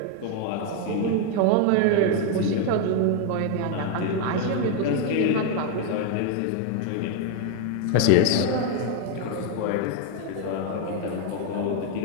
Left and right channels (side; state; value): both; different; correlation 0.01